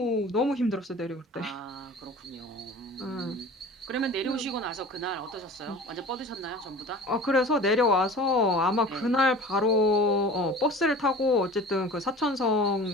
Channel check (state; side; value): normal; both; correlation 0.40